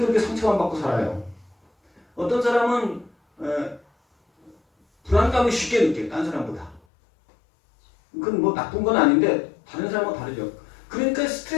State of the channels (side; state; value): right; drops out; at 6.8 s